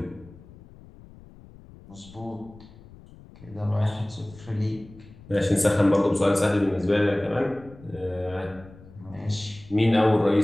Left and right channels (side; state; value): left; noise; rumble, 21 dB below the sound